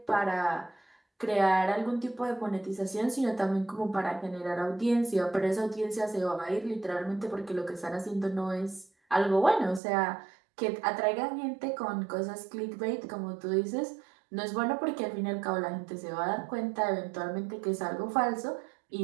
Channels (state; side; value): drops out; left; at 9.8 s